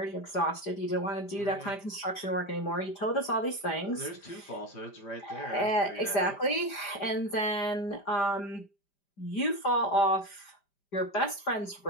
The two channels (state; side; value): late; right; 5.0 ms